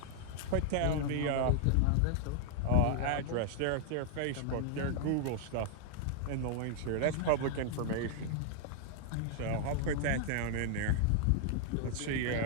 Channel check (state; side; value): different; both; correlation -0.01